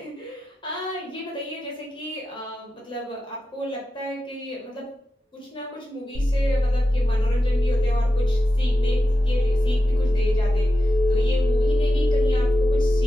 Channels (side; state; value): both; normal; correlation 0.92